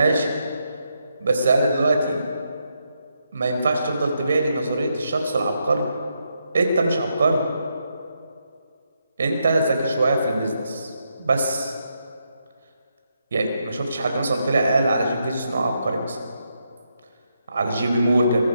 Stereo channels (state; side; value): inverted; both; correlation -0.81